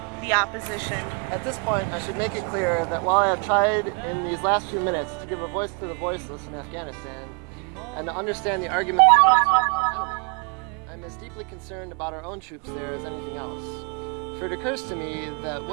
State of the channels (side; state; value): left; quieter; 34.3 dB